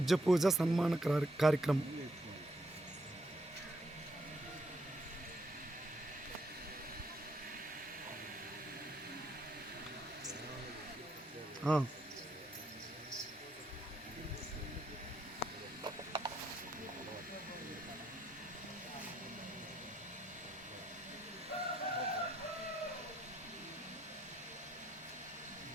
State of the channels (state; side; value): normal; both; correlation 0.74